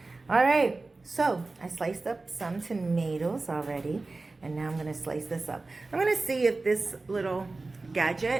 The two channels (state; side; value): quieter; left; 3.4 dB